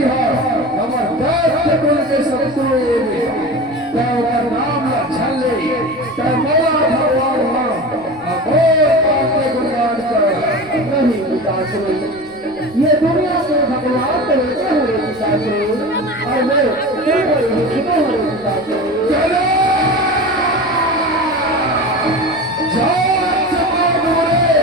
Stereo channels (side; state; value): left; noise; rumble, 27 dB below the sound